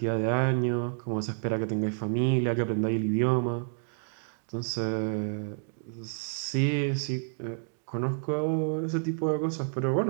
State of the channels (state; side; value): silent; left; 58 dB below the other